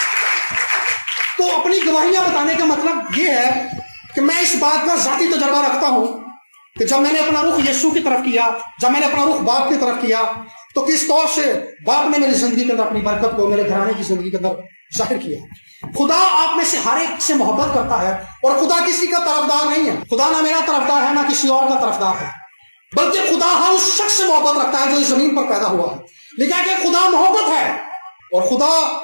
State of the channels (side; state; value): both; inverted; correlation -1.00